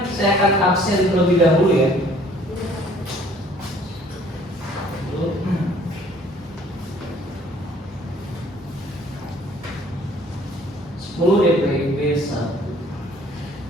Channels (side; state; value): both; normal; correlation 0.57